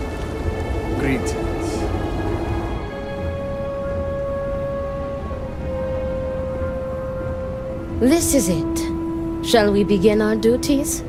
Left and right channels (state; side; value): identical; both; correlation 1.00